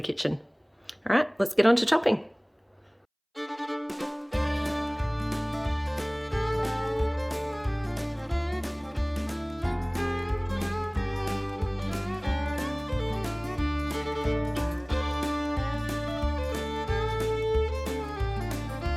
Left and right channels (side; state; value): both; identical; correlation 1.00